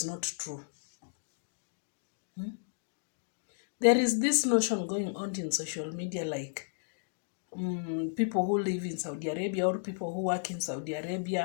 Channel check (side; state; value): right; silent; digital silence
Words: not true. There is this notion going on in social media like people who live in Saudi Arabia or people who work in Saudi